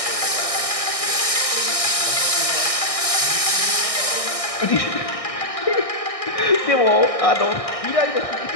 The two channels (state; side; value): late; right; 1.6 ms